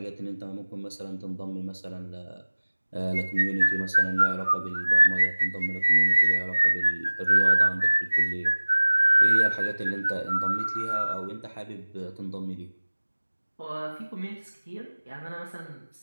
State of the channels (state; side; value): inverted; both; correlation -1.00